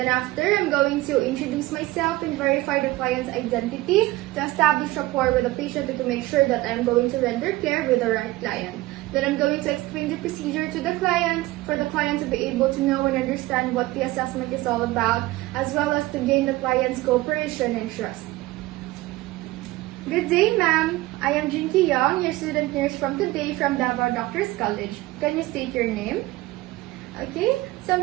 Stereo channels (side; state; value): left; quieter; 18.8 dB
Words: after, I'm going to introduce myself and verify the client's identity to establish rapport with the patient and to make sure that I'm going to render care with the right client. Then I'm going to explain the procedure to the client for the client to be able to know and understand what the assessment is all about, as well as to gain the client's cooperation and trust. Good day, ma'am. I am Jinky Young, your student nurse from today from Davao Doctors College. Can you state your name? Okay, so I'm